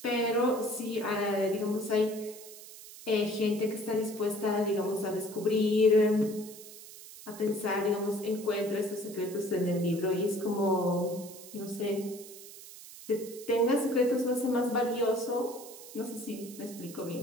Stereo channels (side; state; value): right; noise; hiss, 16 dB below the sound